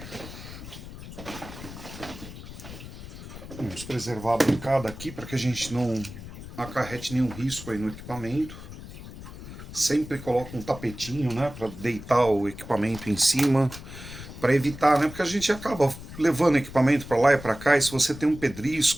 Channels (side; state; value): left; noise; rumble, 13 dB below the sound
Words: Vamos preservar a bancada aqui para que a gente não acarrete nenhum risco aí no equipamento. Sempre coloca um tapetinho, né, para deitar o equipamento em cima, para evitar, né, porque a gente acaba levando o equipamento para lá e para cá, e se você tem um